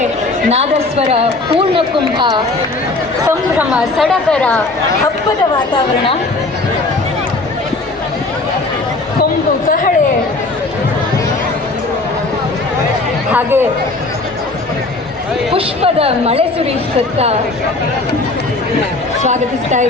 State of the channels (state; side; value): quieter; right; 3.2 dB